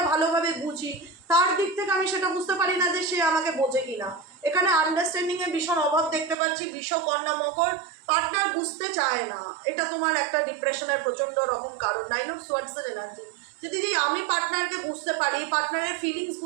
ভালোভাবে বুঝি তার দিক থেকে আমি সেটা বুঝতে পারি না যে সে আমাকে বোঝে কিনা। এখানে আন্ডারস্ট্যান্ডিংয়ের ভীষণ অভাব দেখতে পাচ্ছি। বৃষ, কন্যা, মকর পার্টনার বুঝতে চায় না, এটা তোমার একটা ডিপ্রেশনের প্রচণ্ড রকম কারণ। 9 অফ সোয়ার্ডসের এনার্জি, যে দিদি আমি পার্টনারকে বুঝতে পারি, পার্টনারের ফিলিংস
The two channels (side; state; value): left; drops out; at 6.4 s